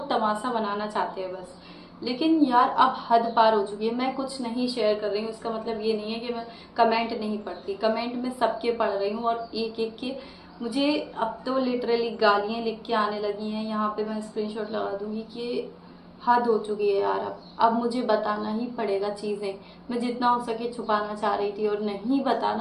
तमाशा बनाना चाहते हैं बस। लेकिन यार अब हद पार हो चुकी है। मैं कुछ नहीं शेयर कर रही हूँ, इसका मतलब ये नहीं है कि मैं कमेंट नहीं पढ़ती। कमेंट में सबके पढ़ रही हूँ और एक एक के मुझे अब तो लिटरली गालियाँ लिख के आने लगी हैं। यहाँ पे मैं स्क्रीनशॉट लगा दूंगी कि हद हो चुकी है यार। अब मुझे बताना ही पड़ेगा चीज़ें। मैं जितना हो सके छुपाना चाह रही थी और नहीं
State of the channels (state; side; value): identical; both; correlation 1.00